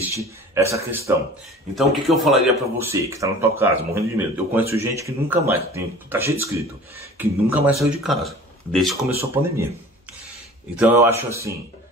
essa questão. Então o que eu falaria pra você, que está na tua casa, morrendo de medo? Eu conheço gente que nunca mais, tá cheio de escrito, que nunca mais saiu de casa, desde que começou a pandemia. Então eu acho assim,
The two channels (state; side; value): normal; both; correlation 0.43